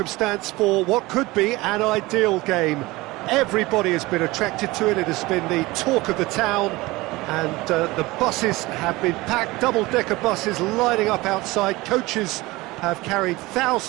for what could be an ideal game. Everybody has been attracted to it. It has been the talk of the town and the buses have been packed, double-decker buses lining up outside. Coaches have carried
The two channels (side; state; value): left; quieter; 20.8 dB